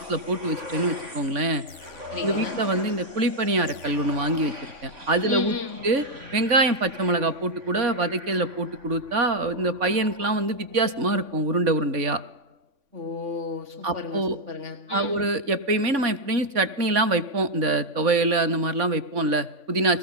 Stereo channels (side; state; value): left; late; 3.5 ms